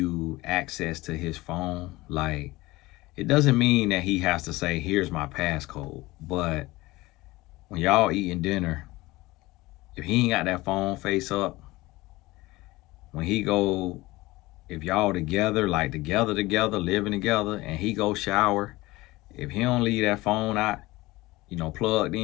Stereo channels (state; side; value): quieter; right; 20.1 dB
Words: access to his phone, like, it doesn't mean that he has to say, "Here's my passcode." But when y'all eating dinner, if he ain't got that phone face up, when he go, if y'all together, like together, living together, and he go shower, if he don't leave that phone out, plugged